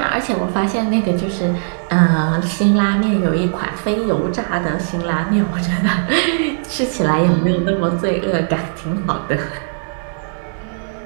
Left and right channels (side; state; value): left; silent; digital silence